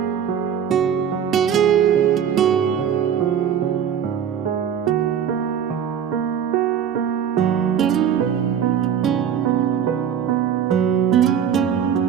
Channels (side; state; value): left; quieter; 8.6 dB